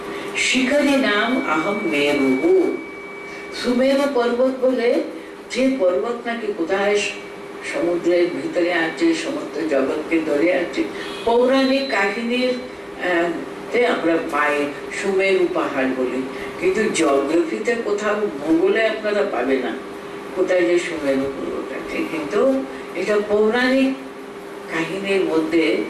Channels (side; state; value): both; identical; correlation 1.00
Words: শিখরী নাম আহম মেরু, সুমেরু পর্বত বলে যে পর্বত নাকি কোথায় সমুদ্রের ভিতরে আছে, সমুদ্র জগৎকে ধরে আছে। পৌরাণিক কাহিনীর আমরা পাই সুমেরু পাহাড় বলে, কিন্তু জিওগ্রাফিতে কোথাও ভূগোলে আপনারা পাবে না কোথায় যে সুমেরু পর্বত আছে, কিন্তু এটা পৌরাণিক কাহিনীর মধ্যে